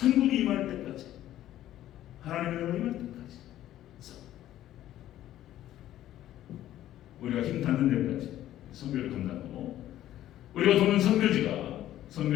임할 때까지, 하나님의 나라가 임할 때까지 우리가 힘 닿는 데까지 선교를 감당하고, 우리가 도는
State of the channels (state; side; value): quieter; right; 13.0 dB